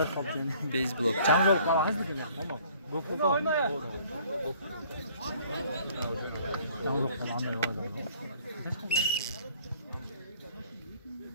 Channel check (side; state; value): both; inverted; correlation -0.56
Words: kaptın. Base block. Çamjol kala hızlı gibi. Tamam. Gokul oyna ya. Çamjol kala anlayı oyna.